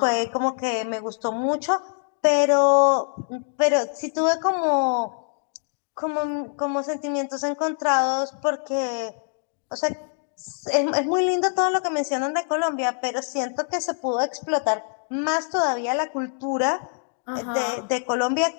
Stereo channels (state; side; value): silent; right; digital silence